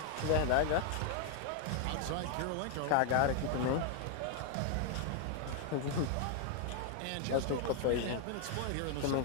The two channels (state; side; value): different; both; correlation 0.00